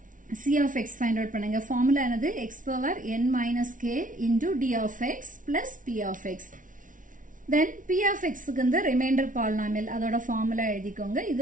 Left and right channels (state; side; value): late; left; 0.38 ms